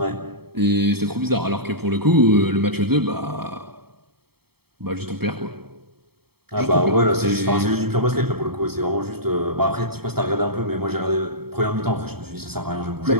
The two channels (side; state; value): left; late; 0.96 ms